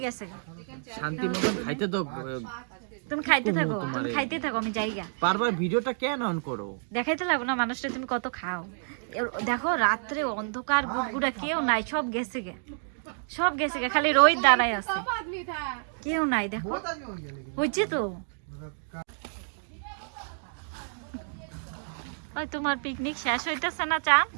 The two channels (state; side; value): silent; left; digital silence